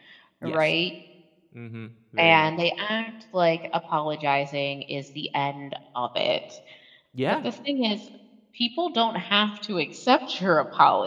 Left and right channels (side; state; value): both; identical; correlation 1.00